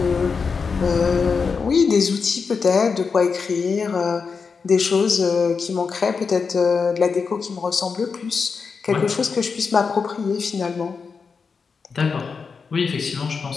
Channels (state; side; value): quieter; right; 5.3 dB